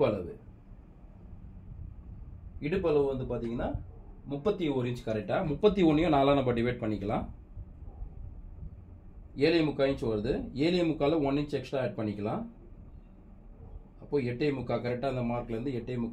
அளவு வந்து பார்த்தீங்கன்னா 31 இன்ச் கரெக்டாக. 31ஐயும் 4ஆக நம்ம டிவைட் பண்ணிக்கலாம். 7.25 இன்ச் வருது. 7.25 1 இன்ச் எக்ஸ்ட்ரா ஆட் பண்ணிக்கலாம். அப்போ 8.25 கரெக்டாக அந்த மார்க்லேருந்து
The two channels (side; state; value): both; identical; correlation 1.00